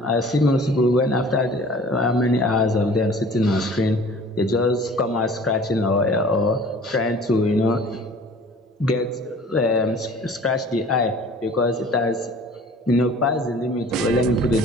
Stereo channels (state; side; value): normal; both; correlation 0.48